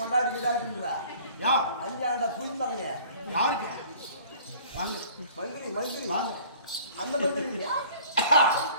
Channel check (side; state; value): both; inverted; correlation -0.49